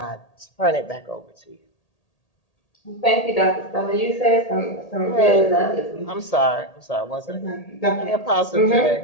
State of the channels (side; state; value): right; late; 1.8 ms